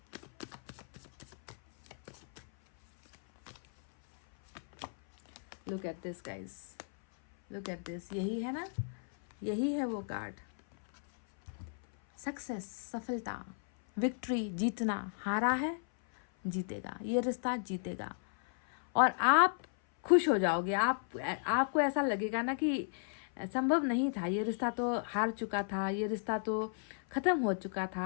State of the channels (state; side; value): silent; right; 55 dB below the other